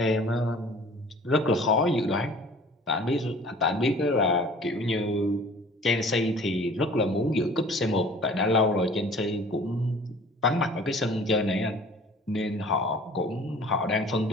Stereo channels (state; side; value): normal; both; correlation 0.48